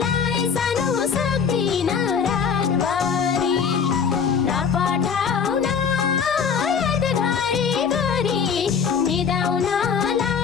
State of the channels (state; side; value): quieter; right; 6.5 dB